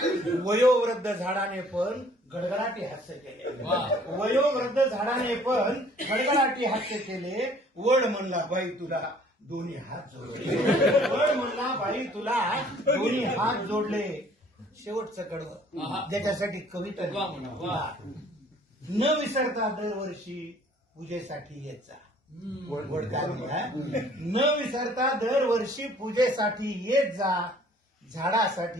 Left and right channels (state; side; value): normal; both; correlation 0.56